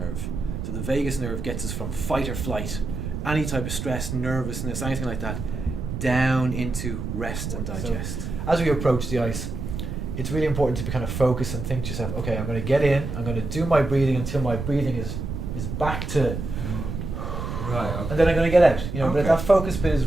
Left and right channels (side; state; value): right; noise; rumble, 5 dB below the sound